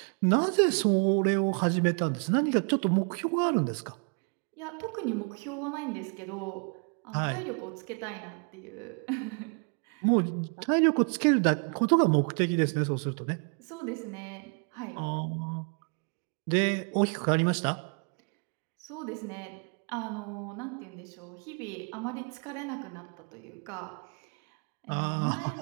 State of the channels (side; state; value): left; quieter; 39.0 dB